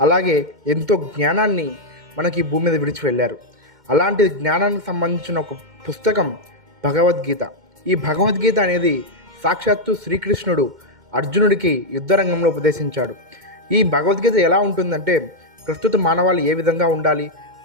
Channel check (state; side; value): late; left; 2.1 ms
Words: అలాగే ఎంతో జ్ఞానాన్ని మనకి ఈ భూమి మీద విడిచి వెళ్ళారు. అలాంటి జ్ఞానానికి సంబంధించిన ఒక పుస్తకం భగవద్గీత. ఈ భగవద్గీత అనేది సాక్షాత్తు శ్రీకృష్ణుడు అర్జునుడికి యుద్ధరంగంలో ఉపదేశించాడు. ఈ భగవద్గీత ఎలా ఉంటుందంటే, ప్రస్తుత మానవాళి ఏ విధంగా ఉండాలి,